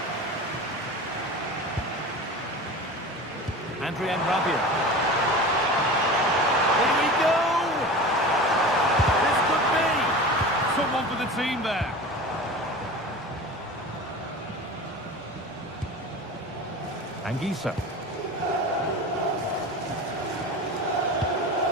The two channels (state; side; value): normal; both; correlation 0.33